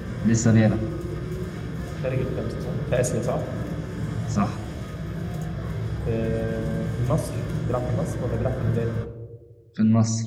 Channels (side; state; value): both; identical; correlation 1.00